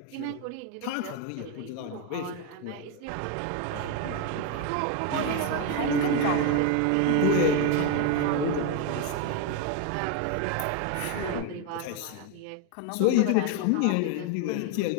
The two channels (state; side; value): different; both; correlation 0.02